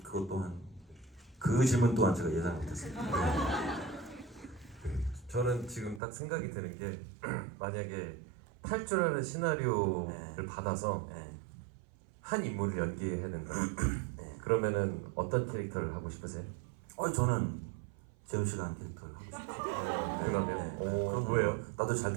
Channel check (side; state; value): left; drops out; at 6.0 s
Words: 또한 그 질문 또한 제가 예상 못했습니다. 저는 지금 딱 생각이 드는 게 만약에 탈출하는 시나리오를 네. 받아서 네. 한 인물을 연기해야 된다. 네. 그러면은 어떤 캐릭터를 하고 싶으세요? 저는 재훈 씨가 한 캐릭터를 하고 싶어요. 그러면 그럼 뭐예요? 나도 잘